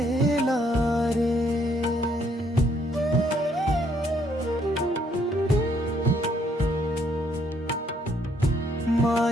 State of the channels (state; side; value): normal; both; correlation 0.69